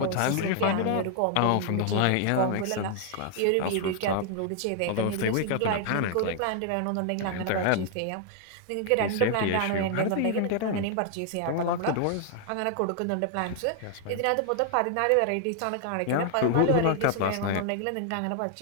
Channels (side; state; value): both; different; correlation 0.00